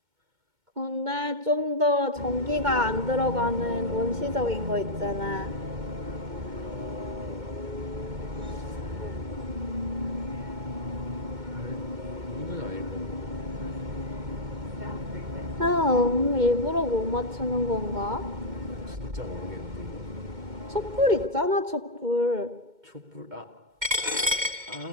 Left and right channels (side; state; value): left; late; 2.2 ms